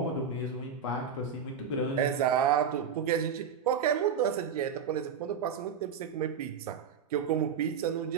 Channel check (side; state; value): left; quieter; 6.8 dB